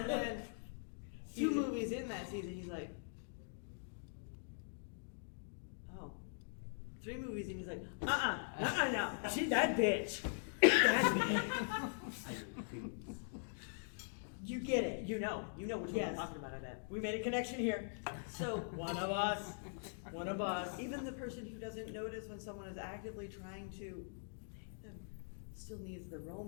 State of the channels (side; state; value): right; silent; digital silence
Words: then 2 movies in that season, he's like, "Oh." 3 movies in, he's like, no. She's that bitch. That bitch. You get it. You know which one Yes. I'm talking about, I bet. We made a connection here. So, One of us. One of us. even the person who doesn't notice when someone is actively trying to take them still needs the